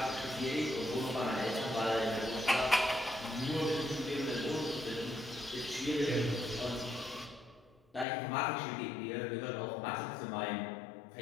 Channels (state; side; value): drops out; right; at 8.1 s